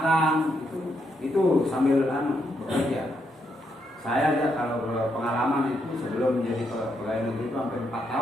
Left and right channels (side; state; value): both; normal; correlation 0.79